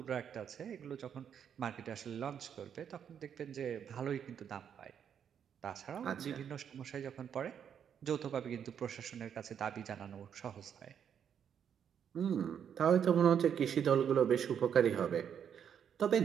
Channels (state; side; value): quieter; left; 8.3 dB